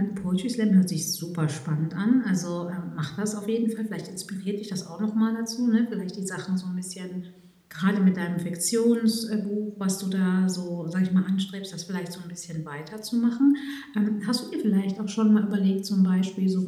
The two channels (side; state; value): both; identical; correlation 1.00